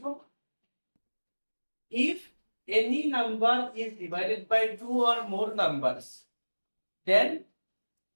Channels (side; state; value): both; inverted; correlation -1.00